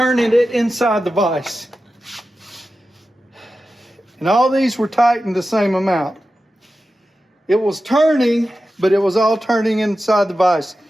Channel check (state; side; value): normal; both; correlation 0.93